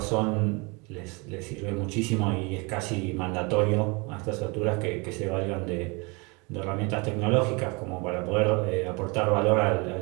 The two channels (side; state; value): left; quieter; 28.9 dB